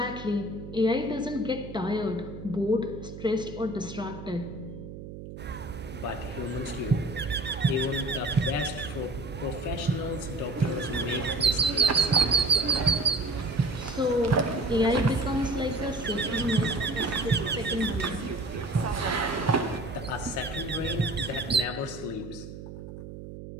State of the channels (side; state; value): right; noise; hum, 12 dB below the sound